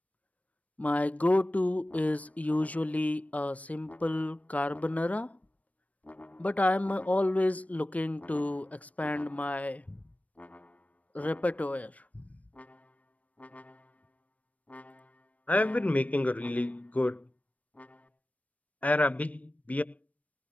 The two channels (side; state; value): right; late; 0.069 ms